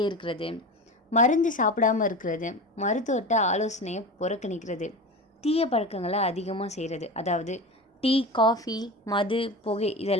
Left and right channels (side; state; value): both; normal; correlation 0.28